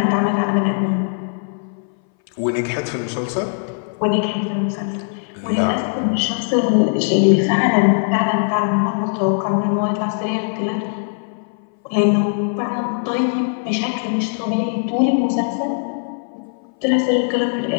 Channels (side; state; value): right; silent; 60 dB below the other